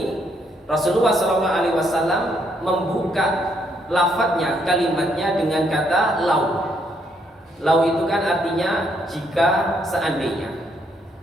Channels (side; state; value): both; normal; correlation 0.73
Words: Rasulullah SAW membuka lafadznya, kalimatnya dengan kata lau. Lau itu kan artinya jika, seandainya.